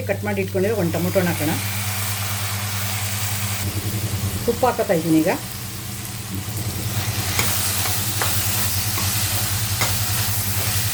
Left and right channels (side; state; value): both; identical; correlation 1.00